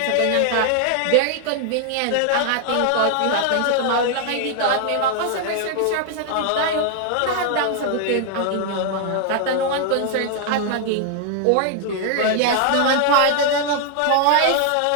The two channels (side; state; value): both; different; correlation 0.00